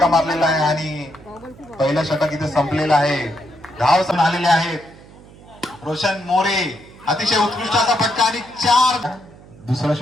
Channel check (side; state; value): right; noise; hum, 22 dB below the sound